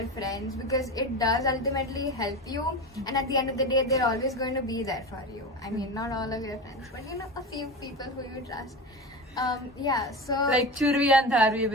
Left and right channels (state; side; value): normal; both; correlation 0.26